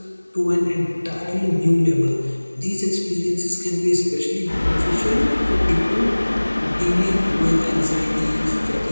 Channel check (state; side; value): inverted; both; correlation -1.00